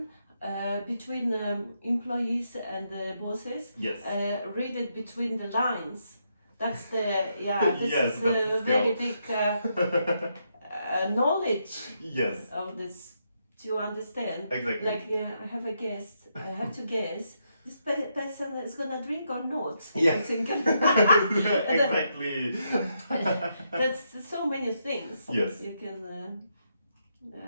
between employees and bosses. Yes. Read it between the lines. That's the, this Yes, is that's a very big knowledge Yes. of this to understand. Exactly. Like I have a guess, I have to guess, this person is gonna drink or not. Yeah. I'm thinking. Exactly. That's so many things. Yes. You can,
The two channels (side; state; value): both; inverted; correlation -0.80